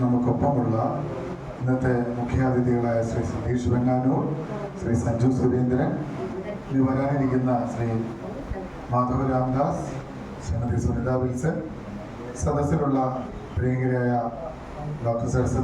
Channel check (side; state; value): both; identical; correlation 1.00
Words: നമുക്കൊപ്പമുള്ള ഇന്നത്തെ മുഖ്യാതിഥികളായ ശ്രീ സതീഷ് വെങ്ങാനൂർ, ശ്രീ സഞ്ജു സുരേന്ദ്രൻ, ഇനി വരാനിരിക്കുന്ന ശ്രീ മാധവ് രാംദാസ്, ശ്രീമതി സുനിത വിൽസൺ, സദസ്സിലുള്ള പ്രിയങ്കരായ doctor